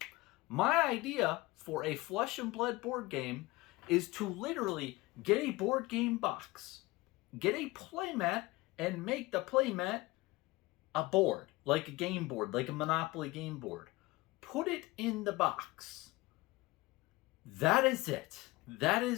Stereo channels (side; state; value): right; quieter; 21.1 dB